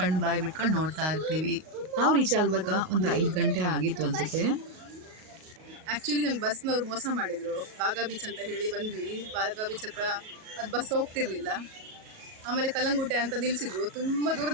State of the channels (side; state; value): left; late; 37 ms